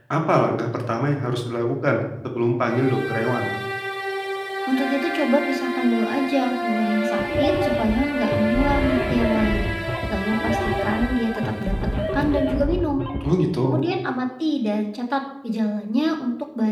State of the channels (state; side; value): identical; both; correlation 1.00